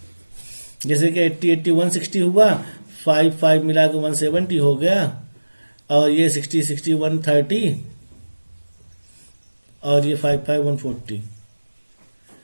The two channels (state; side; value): inverted; both; correlation -1.00